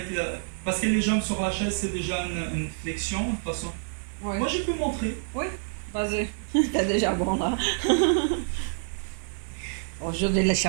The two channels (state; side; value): silent; left; digital silence